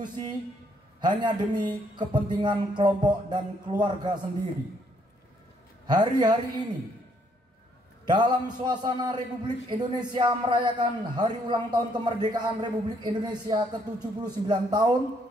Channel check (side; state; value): both; normal; correlation 0.69